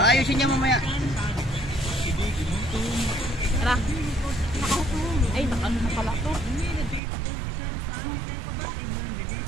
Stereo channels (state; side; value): drops out; left; at 7.0 s